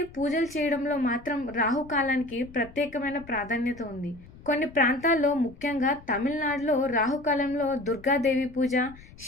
పూజలు చేయడంలో మాత్రం రాహుకాలానికి ప్రత్యేకమైన ప్రాధాన్యత ఉంది. కొన్ని ప్రాంతాల్లో, ముఖ్యంగా తమిళనాడులో రాహుకాలంలో దుర్గాదేవి పూజ,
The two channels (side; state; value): left; noise; rumble, 21 dB below the sound